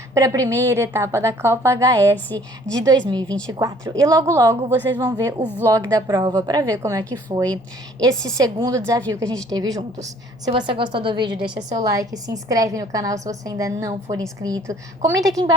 para a primeira etapa da Copa HS de 2024. E logo, logo vocês vão ver o vlog da prova para ver como é que foi esse segundo desafio que a gente teve juntos. Se você gostou do vídeo, deixa seu like, se inscreve no canal se você ainda não for inscrito. Comenta aqui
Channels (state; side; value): normal; both; correlation 0.57